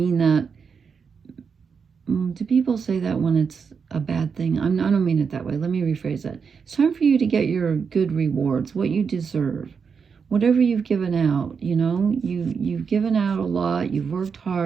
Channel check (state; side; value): quieter; left; 6.0 dB